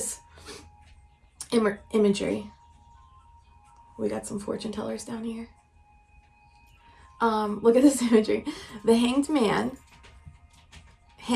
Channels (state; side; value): identical; both; correlation 1.00